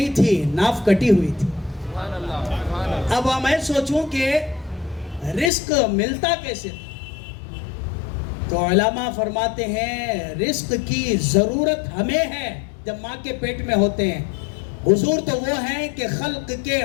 تھی, ناف کٹی ہوئی تھی. اب میں سوچوں کہ رزق ملتا کیسے؟ تو علماء فرماتے ہیں رزق کی ضرورت ہمیں ہے جب ماں کے پیٹ میں ہوتے ہیں. حضور تو وہ ہیں کہ خلق کے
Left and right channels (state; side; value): drops out; right; at 5.5 s